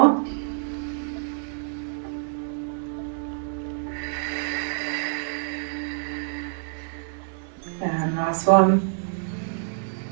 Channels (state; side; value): silent; left; digital silence